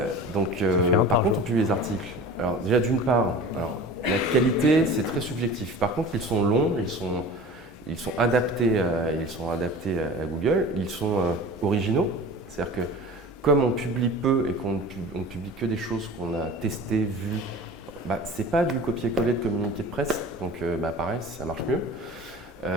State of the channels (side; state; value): both; normal; correlation 0.39